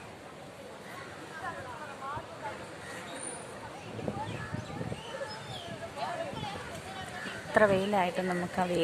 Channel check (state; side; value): identical; both; correlation 1.00